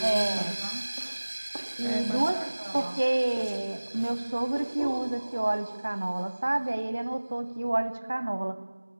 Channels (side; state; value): both; inverted; correlation -1.00